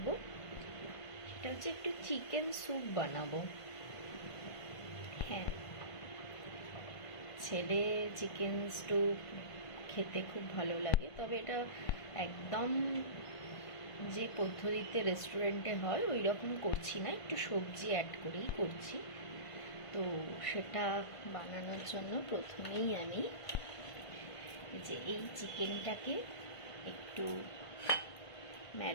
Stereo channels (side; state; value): right; late; 1.5 ms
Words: সেটা হচ্ছে একটু চিকেন স্যুপ বানাবো। হ্যাঁ, ছেলে চিকেন স্যুপ খেতে খুব ভালো লাগে, তবে এটা একদম যে পদ্ধতিতে রেস্টুরেন্টে হয় ওই রকম করছি না, একটু সবজি অ্যাড করেই করছি। তো সেটা বানানোর জন্য প্রথমেই আমি এই চিকেনটাকে একটু